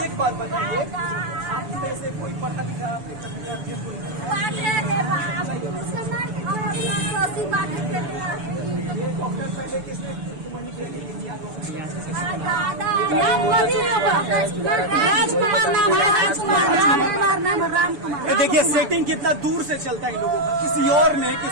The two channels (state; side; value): late; left; 6.9 ms